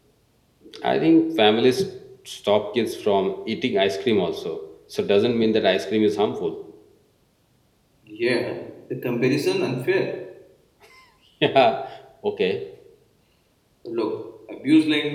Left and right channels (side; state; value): both; identical; correlation 1.00